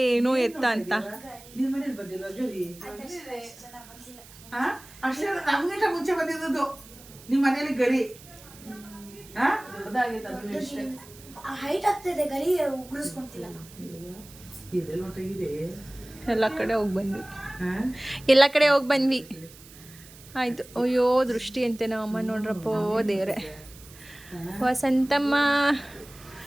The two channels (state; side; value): noise; right; hiss, 20 dB below the sound